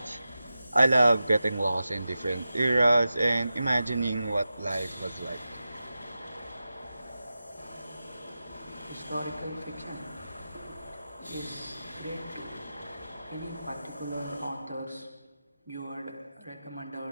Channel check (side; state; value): both; inverted; correlation -0.93